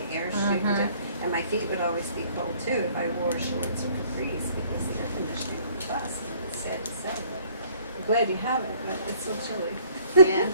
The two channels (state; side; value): inverted; both; correlation -0.58